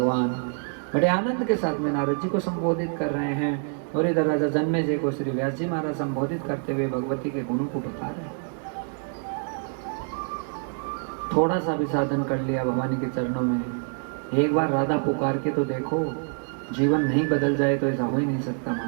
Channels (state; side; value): silent; left; 55 dB below the other